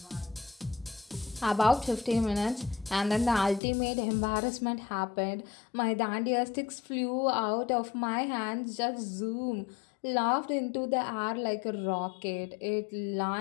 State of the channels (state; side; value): drops out; right; at 3.6 s